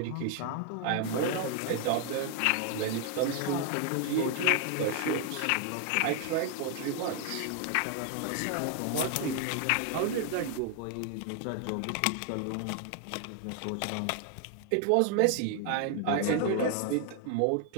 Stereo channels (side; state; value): both; different; correlation 0.00